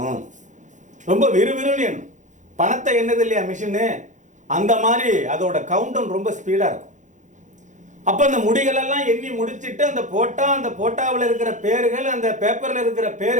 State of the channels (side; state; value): left; late; 0.36 ms